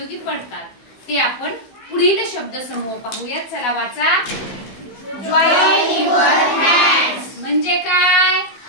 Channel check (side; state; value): right; late; 15 ms